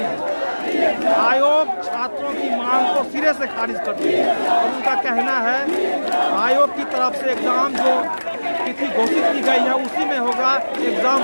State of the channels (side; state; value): both; inverted; correlation -1.00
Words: है। आयोग छात्रों की मांग को सिरे से खारिज कर दी है और उनका कहना है आयोग की तरफ से एग्ज़ाम जो तिथि घोषित की गई है उसी में होगा, एग्ज़ाम